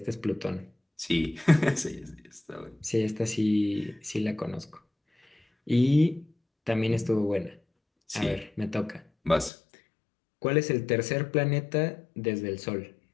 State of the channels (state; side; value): drops out; right; at 9.5 s